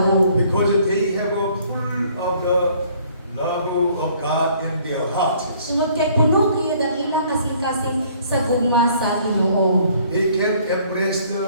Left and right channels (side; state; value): both; inverted; correlation -0.60